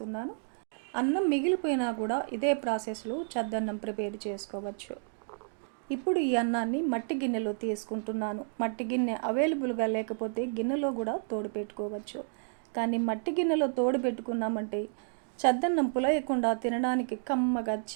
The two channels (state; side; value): silent; left; 57 dB below the other